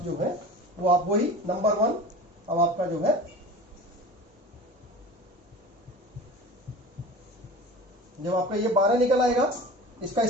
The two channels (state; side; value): normal; both; correlation 0.36